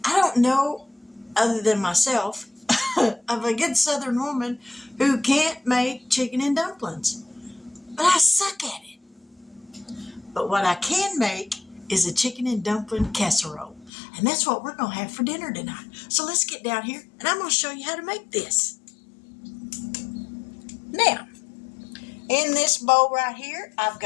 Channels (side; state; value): right; drops out; at 13.9 s